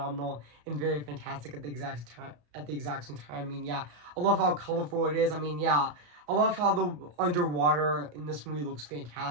and very fantastic at the exact time. I mean, yeah, I love how colorful it is. I mean, yeah, I love how the underwater in this movie looks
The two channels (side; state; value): left; late; 34 ms